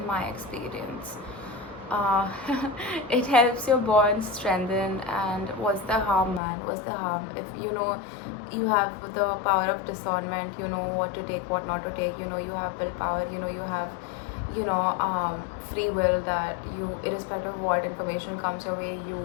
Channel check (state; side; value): drops out; right; at 6.4 s